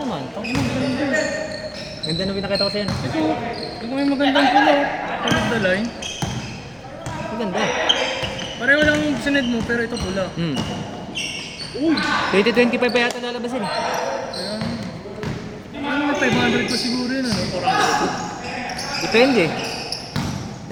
naman. Ganda na pinakita ko sa'yo. Ito may magandang pulo. Tulog the line. Maganda. Pareho lang yung sined mo pero ito pula. Uy! 2025 pa yata lalabasin eh. Kaya, ano may 500 pa siguro yun ano? 400. Depende.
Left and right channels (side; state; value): both; identical; correlation 1.00